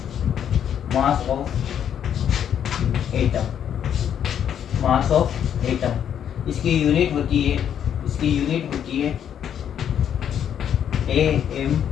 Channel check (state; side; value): quieter; right; 9.1 dB